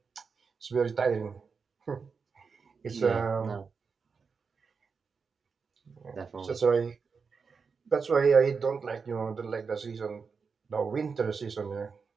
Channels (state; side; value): quieter; left; 5.3 dB